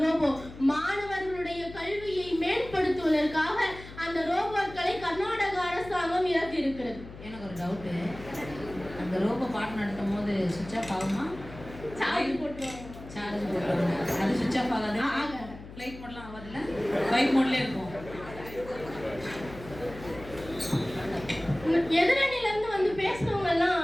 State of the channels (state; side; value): noise; left; hum, 15 dB below the sound